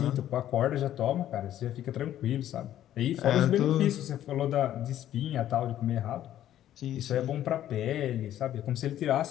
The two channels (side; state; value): right; quieter; 12.0 dB